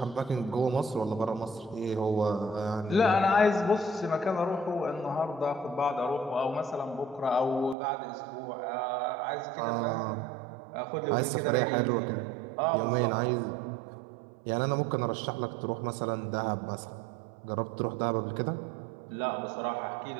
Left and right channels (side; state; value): left; drops out; at 7.8 s